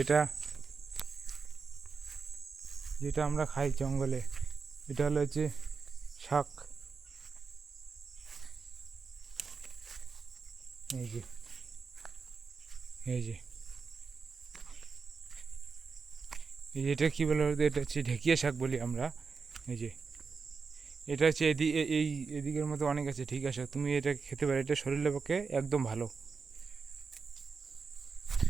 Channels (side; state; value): left; quieter; 5.1 dB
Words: যেটা আমরা খাই জঙ্গলে। এটা হলো হচ্ছে শাক। এই যে, এই যে, এই যে, এটা কী বলে বলতো? এটা হচ্ছে ঢেকিয়া শাক বলি আমরা। এই যে, এটা হচ্ছে এই এদিকের মধ্যে অনেক আছে, ঠিক আছে, তুমি এটা খেতে পারো, এটা শরীরের পক্ষে একদম ভালো।